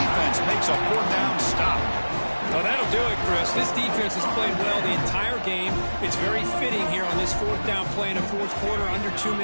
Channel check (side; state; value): both; inverted; correlation -1.00